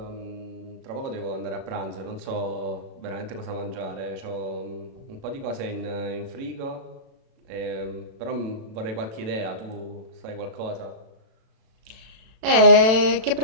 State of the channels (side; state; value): left; late; 36 ms